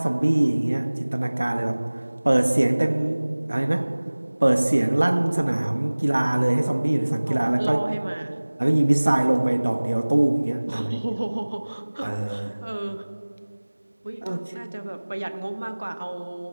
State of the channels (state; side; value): inverted; both; correlation -1.00